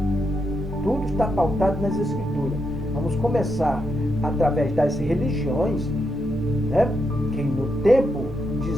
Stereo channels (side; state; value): both; normal; correlation 0.82